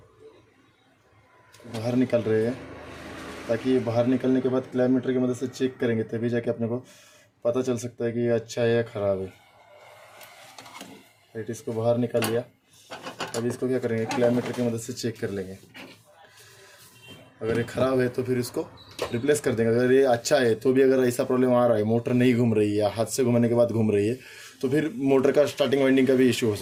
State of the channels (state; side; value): identical; both; correlation 1.00